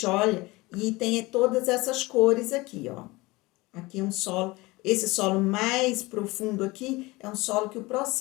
olha e tem todas essas cores aqui, ó. Aqui é um solo, esse solo mais profundo aqui é um solo que o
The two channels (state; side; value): quieter; right; 22.1 dB